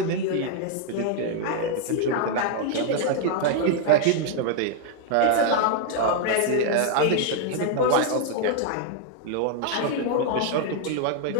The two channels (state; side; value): different; both; correlation 0.00